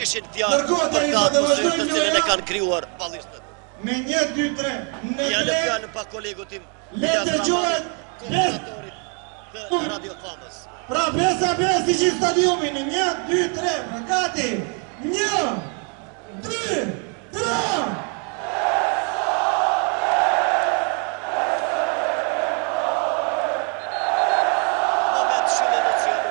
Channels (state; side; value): quieter; left; 38.0 dB